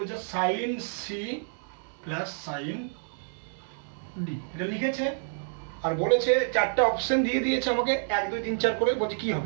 sine C plus sine D, এটা লিখেছে, আর বলেছে চারটা অপশন দিয়ে দিয়েছে আমাকে 1 2 3 4 করে, বলছে কি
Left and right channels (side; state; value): left; silent; digital silence